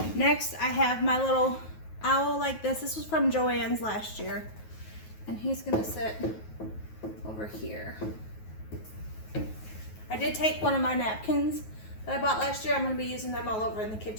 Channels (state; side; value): late; right; 9.3 ms